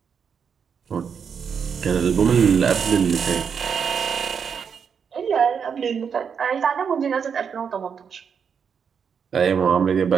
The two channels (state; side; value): quieter; left; 6.8 dB